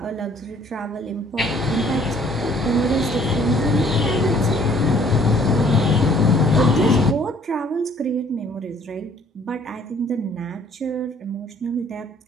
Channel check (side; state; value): both; normal; correlation 0.59